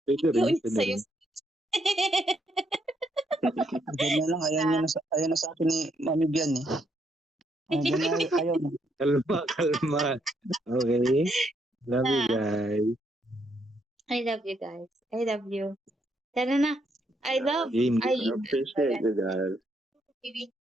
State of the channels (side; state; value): both; normal; correlation 0.74